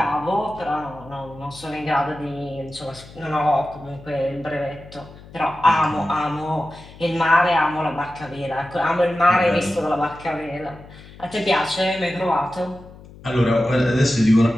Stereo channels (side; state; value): left; noise; hum, 19 dB below the sound